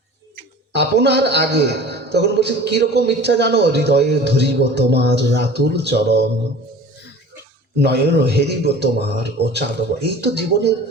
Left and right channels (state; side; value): normal; both; correlation 0.42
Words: আপনার আগে তখন বলছে কিরকম ইচ্ছা জানো, হৃদয়ে ধরিব তোমার রাতুল চরণ, নয়ন হেরিব তোমার ও চাঁদব। এই তো জীবনের